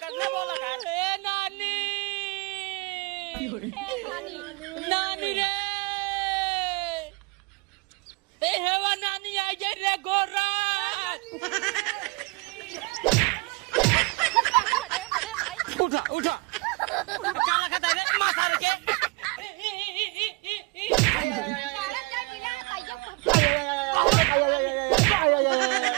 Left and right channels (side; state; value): left; quieter; 27.8 dB